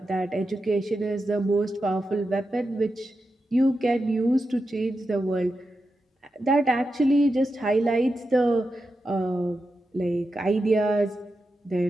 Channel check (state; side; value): normal; both; correlation 0.89